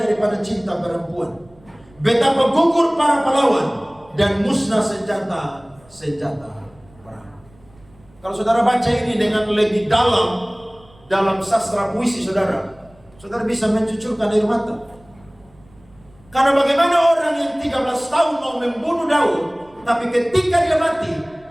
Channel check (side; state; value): right; noise; rumble, 28 dB below the sound